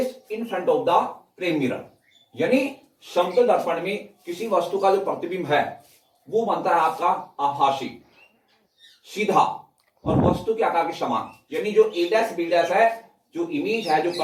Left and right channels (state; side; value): identical; both; correlation 1.00